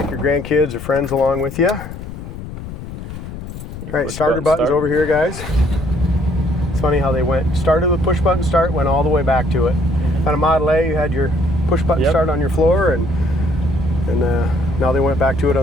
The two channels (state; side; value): noise; left; rumble, 10 dB below the sound